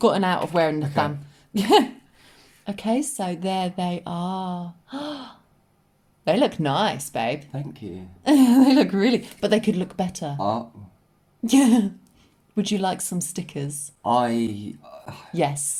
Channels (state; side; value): identical; both; correlation 1.00